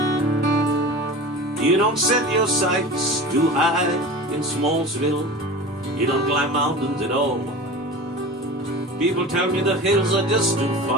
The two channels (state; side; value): normal; both; correlation 0.34